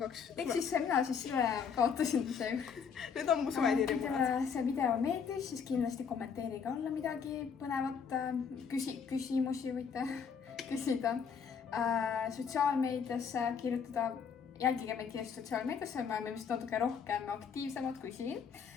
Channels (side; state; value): right; quieter; 6.6 dB